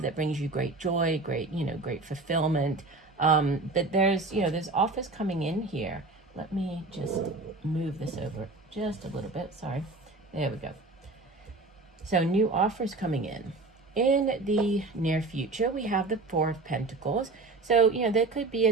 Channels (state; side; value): quieter; left; 3.4 dB